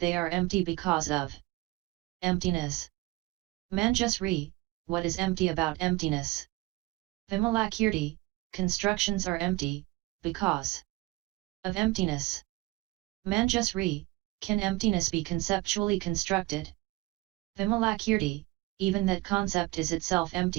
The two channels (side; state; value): left; quieter; 21.1 dB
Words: are empty because of emptiness. Manjusri, what is empty about emptiness? Vimalakirti, constructions are empty, because of emptiness. Manjusri, can emptiness be conceptually constructed? Vimalakirti, even that concept is itself